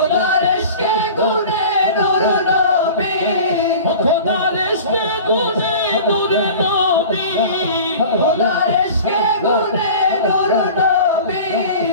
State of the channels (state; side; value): inverted; both; correlation -0.39